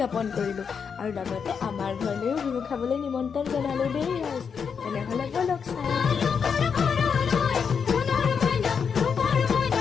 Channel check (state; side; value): quieter; right; 6.4 dB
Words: কৰিলোঁ আৰু লগতে আমাৰ ঘৰলৈও বিহু খাবলৈ নিমন্ত্ৰণ জনালোঁ দেই। তেনেহ'লে ব'লক চাওঁ।